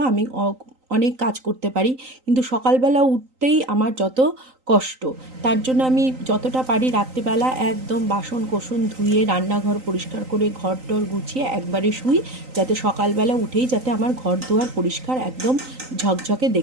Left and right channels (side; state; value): left; late; 3.9 ms